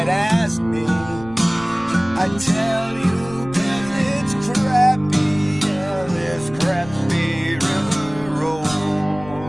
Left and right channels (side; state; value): left; noise; rumble, 17 dB below the sound